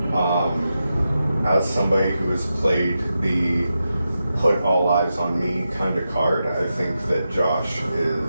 As somebody who has played the put all eyes on me kind of card, I think that Josh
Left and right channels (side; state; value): both; inverted; correlation -0.89